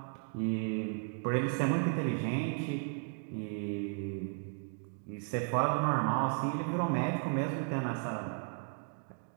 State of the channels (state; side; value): silent; left; 55 dB below the other